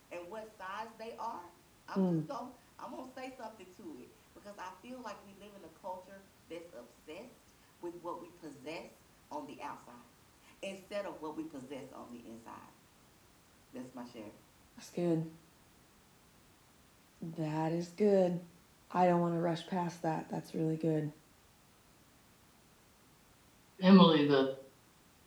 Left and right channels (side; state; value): both; identical; correlation 1.00